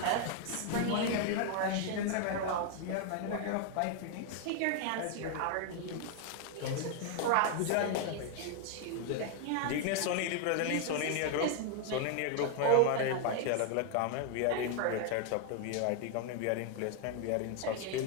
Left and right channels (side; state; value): both; different; correlation 0.00